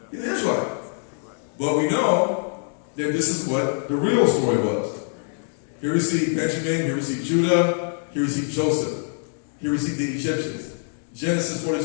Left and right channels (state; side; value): silent; right; 59 dB below the other